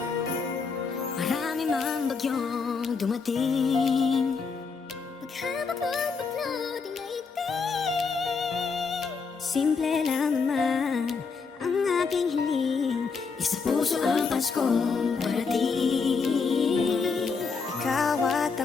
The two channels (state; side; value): quieter; right; 5.1 dB